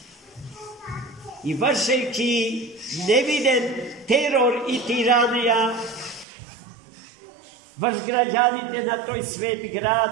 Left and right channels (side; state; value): left; drops out; at 6.2 s